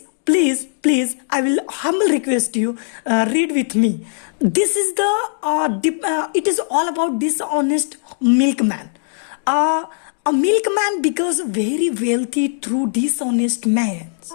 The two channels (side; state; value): right; silent; digital silence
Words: I will humble request you, read with me. This is the it is all about Dishonest Milkman. A milkman becomes very wealthy through dishonest man.